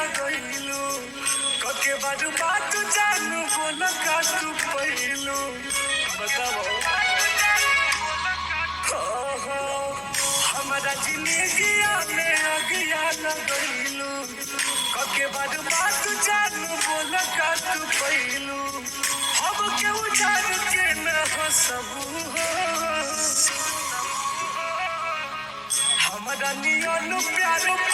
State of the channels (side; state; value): both; identical; correlation 1.00